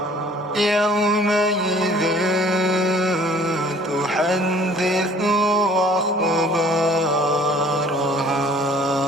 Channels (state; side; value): normal; both; correlation 0.53